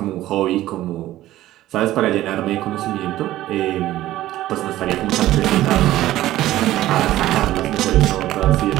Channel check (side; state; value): left; quieter; 14.8 dB